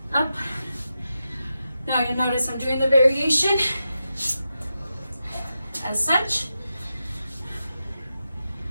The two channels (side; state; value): both; inverted; correlation -0.89